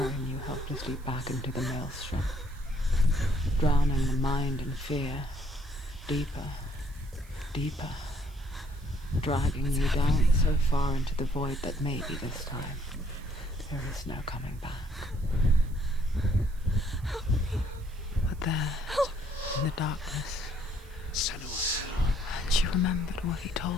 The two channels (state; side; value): noise; right; hiss, 26 dB below the sound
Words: you helplessly back into the maelstrom, drowning the mind in fear, deeper, deeper, dragging you down so far into the void that maybe this time there is no coming back. But there, in the darkness, Sanua, she remembered what he